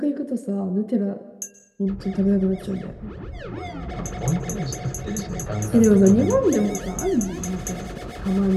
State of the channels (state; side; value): identical; both; correlation 1.00